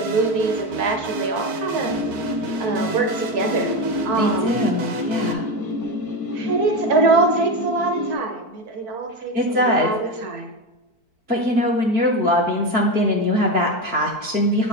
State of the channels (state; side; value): late; left; 4.5 ms